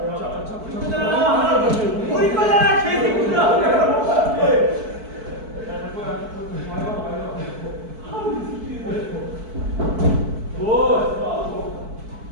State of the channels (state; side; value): late; left; 4.6 ms